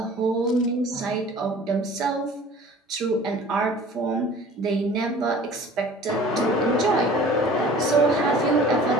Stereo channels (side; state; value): both; normal; correlation 0.46